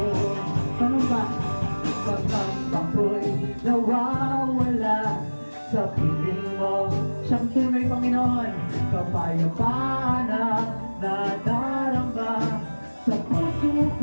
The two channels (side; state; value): both; inverted; correlation -1.00